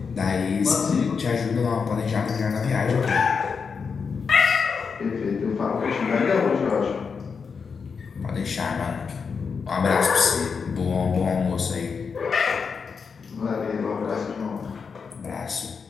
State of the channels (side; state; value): right; quieter; 5.6 dB